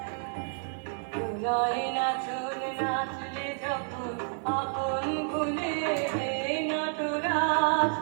নাচলে যখন আপন ভুলে নটরাজ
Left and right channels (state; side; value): silent; left; 58 dB below the other